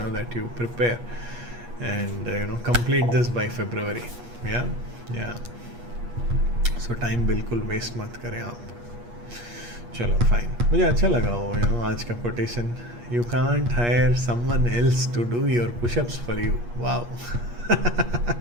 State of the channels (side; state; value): left; late; 8.4 ms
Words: you prepare and complete this by February. Yeah. So time बिल्कुल waste मत करें आप. चलो fine. मुझे अच्छा लगा वो आज का quotation. You can't hire someone else to do your push-ups for you. Wow.